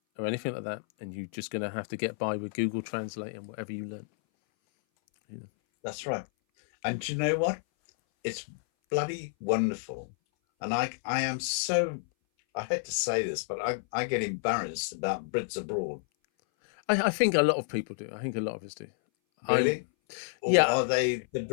or anything like that, and you're just going to have to get by with Google Translate and whatever you learn. Yeah. that's right. And do you know what? It's bloody wonderful. And I am so, I hate to say this, but I get embarrassed about Brits abroad. I think a lot of people do. I think a lot of us do. I'm Really? Or Yeah. are they the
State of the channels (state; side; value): silent; right; 58 dB below the other